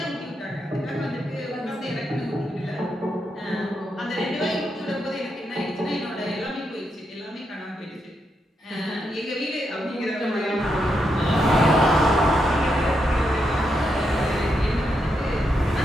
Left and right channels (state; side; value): normal; both; correlation 0.82